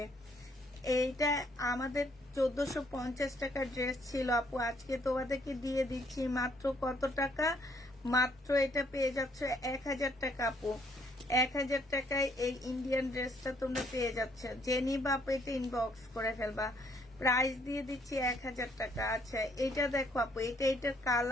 এইটা আমাদের 1450 টাকার ড্রেস ছিল আপু, আজকে তোমাদেরকে দিয়ে দিচ্ছি মাত্র কত টাকা? মাত্র এটা পেয়ে যাচ্ছ 1000 টাকা আপু। 1000 টাকায় এই ইন্ডিয়ান ড্রেসটা তোমরা পেয়ে যাচ্ছ। যে নিবা আপু এটা ইনবক্স করে ফেলবা। প্রাইস দিয়ে দিচ্ছি 1000 টাকা। আচ্ছা, এটা দেখো আপু, এটার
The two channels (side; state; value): both; normal; correlation 0.67